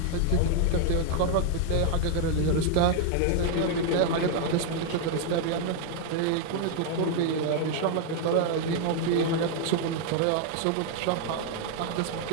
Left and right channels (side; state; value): both; different; correlation 0.00